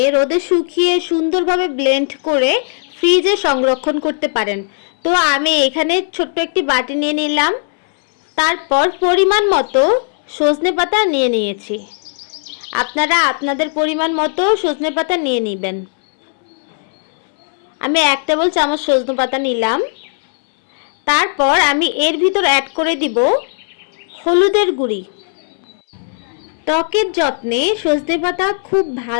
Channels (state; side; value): silent; right; digital silence